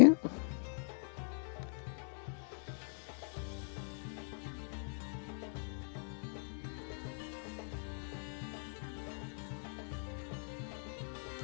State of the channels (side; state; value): right; silent; 51 dB below the other